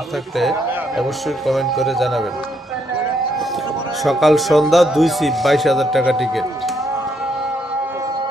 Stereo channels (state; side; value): normal; both; correlation 0.74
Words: থাকলে অবশ্যই কমেন্ট করে জানাবেন। সকাল সন্ধ্যা 2 সিপ, 22,000 টাকা টিকিট।